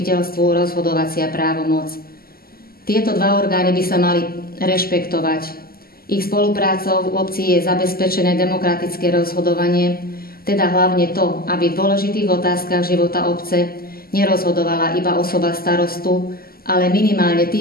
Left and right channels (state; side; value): late; right; 0.43 ms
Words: rozhodovacia právomoc. Tieto dva orgány by sa mali rešpektovať. Ich spoluprácou v obci je zabezpečené demokratické rozhodovanie, teda hlavne to, aby v dôležitých otázkach života obce nerozhodovala iba osoba starostu, ale minimálne